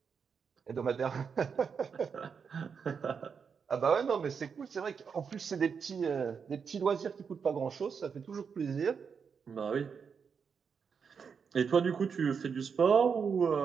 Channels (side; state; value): left; quieter; 6.2 dB